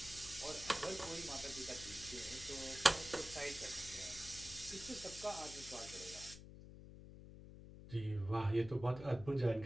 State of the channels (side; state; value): left; noise; hum, 14 dB below the sound